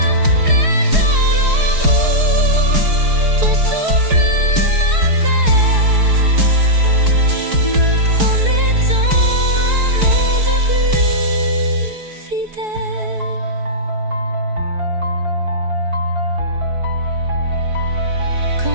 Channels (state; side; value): late; left; 4.7 ms